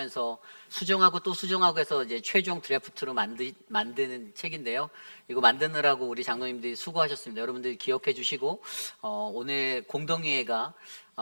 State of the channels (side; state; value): both; inverted; correlation -1.00